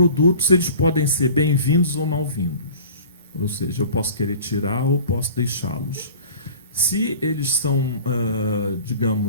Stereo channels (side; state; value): both; inverted; correlation -0.43